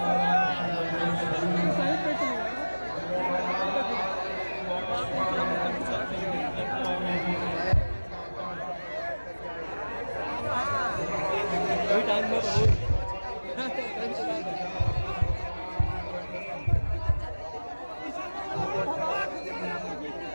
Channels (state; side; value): inverted; both; correlation -1.00